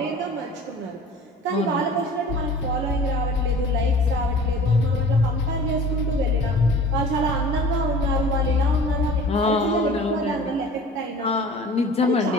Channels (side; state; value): both; normal; correlation 0.44